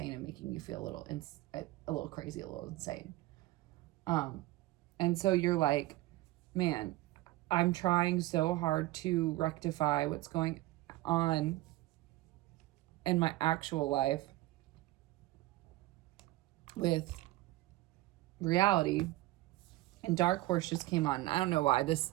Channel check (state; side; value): quieter; left; 17.8 dB